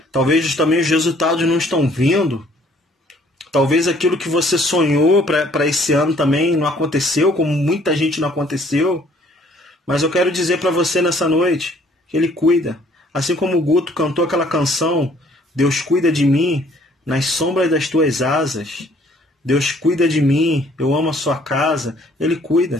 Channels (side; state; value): both; normal; correlation 0.60